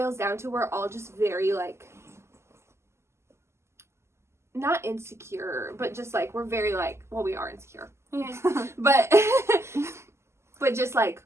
down to we're all just very like not insecure, but just like we're very like, well, we are insecure. but just like,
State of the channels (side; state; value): left; late; 0.13 ms